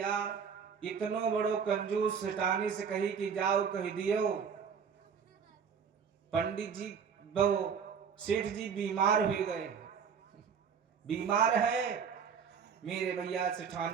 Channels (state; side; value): quieter; left; 6.8 dB